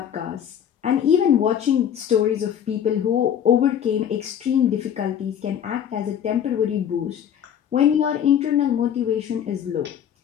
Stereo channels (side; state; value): right; quieter; 9.2 dB